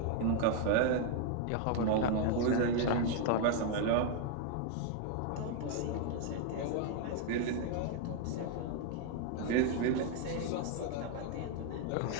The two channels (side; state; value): both; different; correlation 0.00